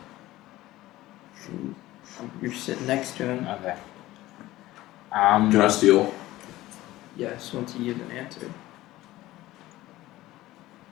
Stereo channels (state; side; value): quieter; right; 16.7 dB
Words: You're sitting next to him. Okay. Can I steal? Yes, once you give an answer.